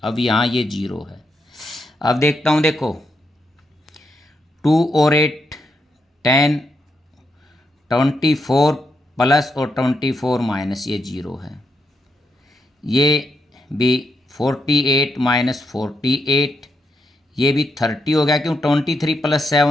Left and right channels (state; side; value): normal; both; correlation 0.81